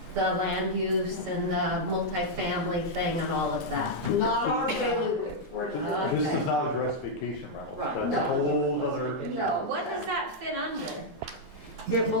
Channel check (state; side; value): normal; both; correlation -0.04